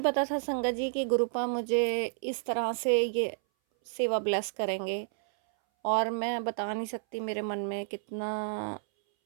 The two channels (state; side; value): silent; left; 58 dB below the other